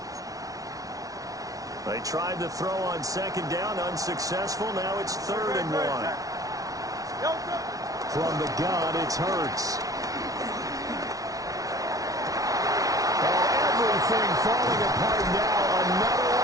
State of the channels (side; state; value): left; late; 0.18 ms